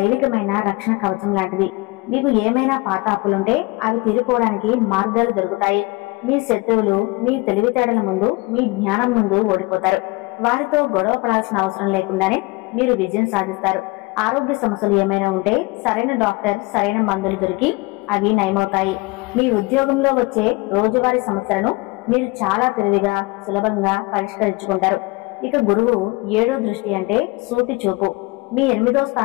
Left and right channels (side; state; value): right; quieter; 24.8 dB